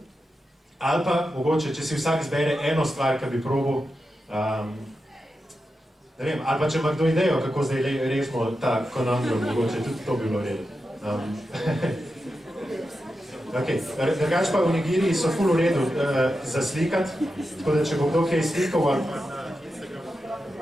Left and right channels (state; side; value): normal; both; correlation 0.89